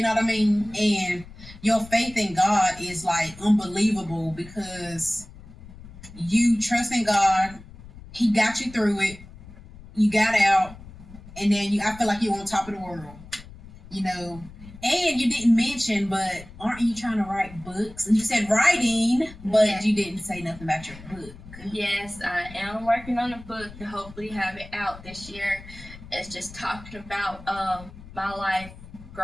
know what I mean? And your faith in God is like unbelievable because you trust in God. He got you through it. You got out, and then I feel like you're on top of the world. And you didn't mention, but aren't you trying to write books? And you said writing, but Yeah. you didn't say nothing about your book. Yes, I am working on a book to hopefully have it out this year. It's just talking about my life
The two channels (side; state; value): left; noise; rumble, 17 dB below the sound